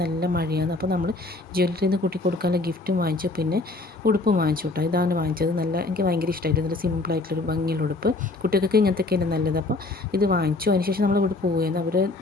നല്ല മഴയാണ്. അപ്പോൾ നമ്മൾ ജ്വല്ലറിയിൽ നിന്ന് കുട്ടി കൊടുക്കാനുള്ള ഗിഫ്റ്റും വാങ്ങിച്ചു, പിന്നെ ഉടുപ്പും വാങ്ങിച്ചു കേട്ടോ. ഇതാണ് വാങ്ങിച്ചത്. എനിക്ക് ഭയങ്കര ഇഷ്ടമായിട്ട്, നല്ല സിമ്പിളായിട്ടുള്ളൊരു ഭംഗിയുള്ള ഉടുപ്പ്. കുട്ടികൾക്ക് ഇങ്ങനത്തെയൊക്കെയാണ് നല്ലത്. അപ്പോൾ ഇത് വാങ്ങിച്ചു. അതിനുശേഷം നമ്മൾ ഇവിടെ പോവുകയാണ്. അവരുടെ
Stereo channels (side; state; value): right; quieter; 3.1 dB